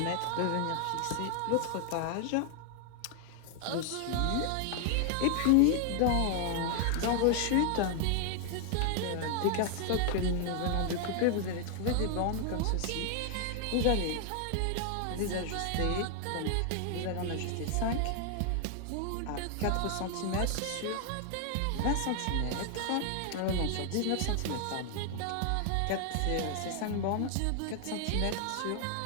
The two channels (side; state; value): both; different; correlation 0.00